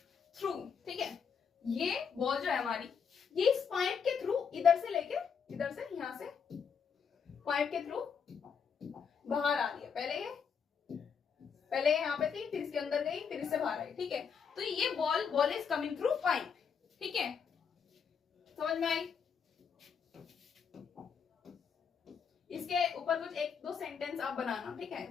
थ्रू, ठीक है। ये बॉल जो है हमारी, ये इस पाइप के थ्रू इधर से लेके इधर से, यहां से पाइप के थ्रू बाहर आ रही है। पहले यहाँ पे थी, फिर इसके अंदर गई, फिर इससे बाहर आई, ठीक है। तो ये ball is coming through pipe, ठीक है, समझ में आई। इसके ऊपर कुछ एक दो सेंटेंस आप बनाना, ठीक है,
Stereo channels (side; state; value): right; quieter; 6.6 dB